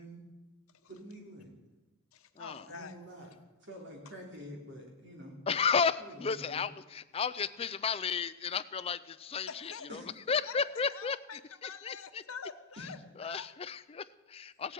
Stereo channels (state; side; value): quieter; right; 5.4 dB